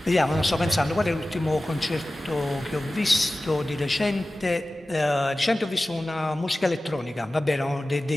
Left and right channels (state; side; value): normal; both; correlation 0.96